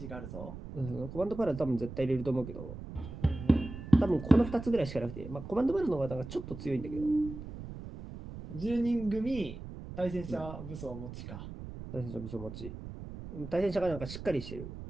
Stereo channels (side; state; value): right; noise; rumble, 11 dB below the sound